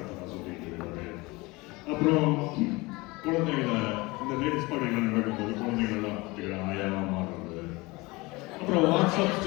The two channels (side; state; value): right; quieter; 23.3 dB